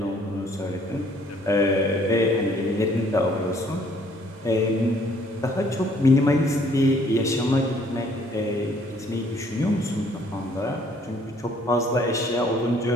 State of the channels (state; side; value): normal; both; correlation 0.62